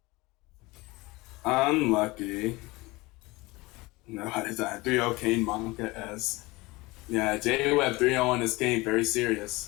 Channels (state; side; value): quieter; right; 22.4 dB